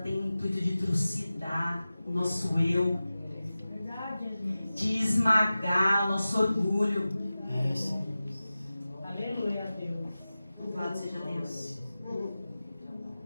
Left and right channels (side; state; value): both; inverted; correlation -0.96